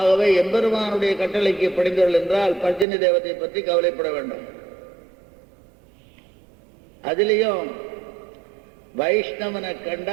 எம்பெருமானுடைய கட்டளைக்கு படிந்தவர்கள் என்றால் பர்ஜன்ய தேவத்தை பற்றி கவலைப்பட வேண்டும். அதிலையும் வைஷ்ணவனை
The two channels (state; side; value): drops out; left; at 2.9 s